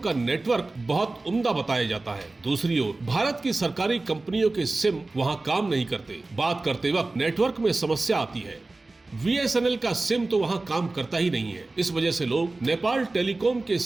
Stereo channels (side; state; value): left; quieter; 3.2 dB